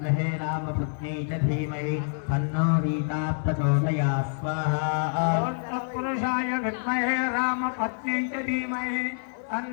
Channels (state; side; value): silent; right; digital silence